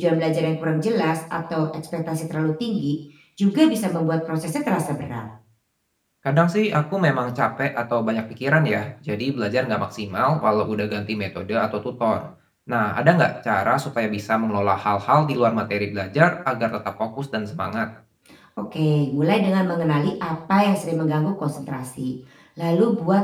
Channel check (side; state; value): both; identical; correlation 1.00